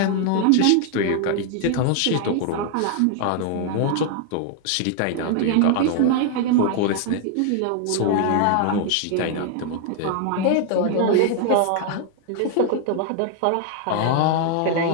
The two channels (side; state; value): both; different; correlation 0.00